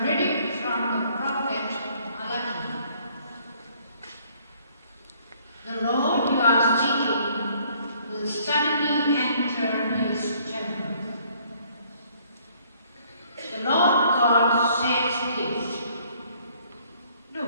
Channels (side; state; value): both; inverted; correlation -0.62